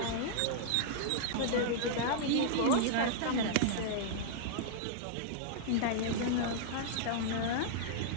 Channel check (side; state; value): both; different; correlation -0.02